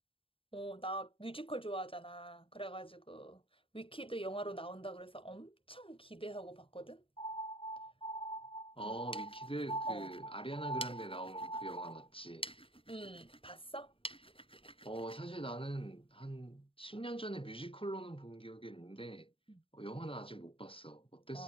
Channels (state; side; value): late; right; 0.26 ms